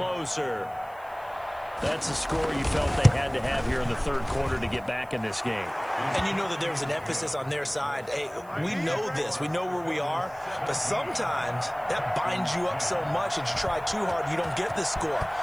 That's a score you felt they had to have here in the 3rd quarter to get back in this game. And you know that there's an emphasis on their side. Hey, we know this. We know where we are. But sometimes that binds you up so much that you try too hard, you don't get the score.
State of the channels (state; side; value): noise; right; hiss, 27 dB below the sound